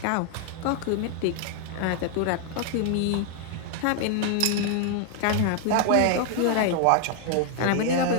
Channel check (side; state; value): both; different; correlation 0.00